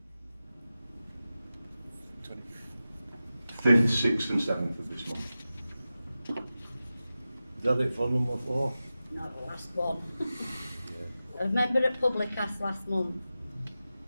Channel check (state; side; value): inverted; both; correlation -0.94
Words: 6th and 7th of this month. Is that it for number 4? No, the last one. I remember at public asked last month